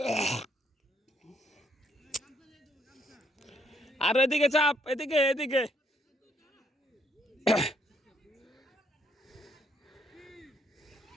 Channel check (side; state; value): both; normal; correlation 0.71